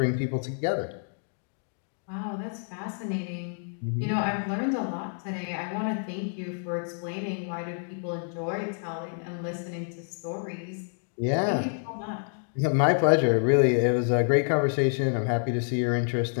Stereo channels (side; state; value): right; silent; 59 dB below the other